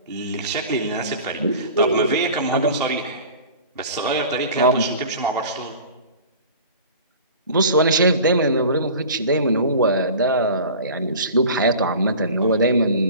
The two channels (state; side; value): inverted; both; correlation -0.40